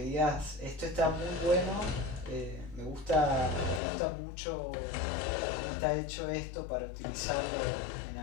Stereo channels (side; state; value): right; drops out; at 3.8 s